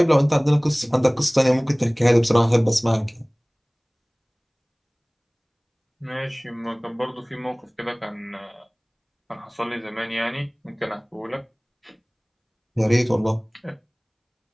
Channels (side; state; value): both; identical; correlation 1.00